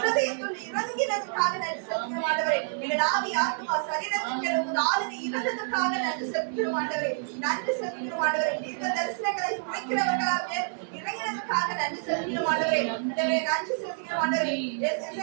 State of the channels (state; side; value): silent; left; digital silence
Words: இறங்கினதற்காக நன்றி செலுத்துகிறோம் ஆண்டவரே. எங்கள் ஆவி ஆத்மா சரீரத்துக்கு உமது ஆளுகை இருந்ததற்காக நன்றி செலுத்துகிறோம் ஆண்டவரே. நன்றி செலுத்துகிறோம் ஆண்டவரே. தீர்க்க தரிசனங்களை உரைக்கிறவர்களால் மேல் இறங்கினதற்காக நன்றி செலுத்துகிறோம் ஆண்டவரே. ஆண்டவரே நன்றி செலுத்துகிறோம் ஆண்டவரே.